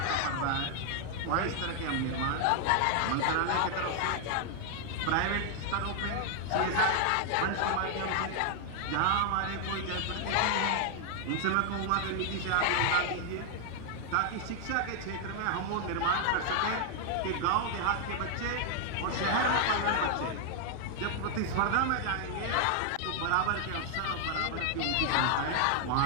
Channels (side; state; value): both; different; correlation 0.00